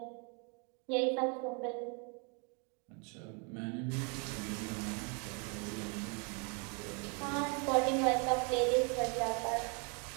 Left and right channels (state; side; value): quieter; left; 35.4 dB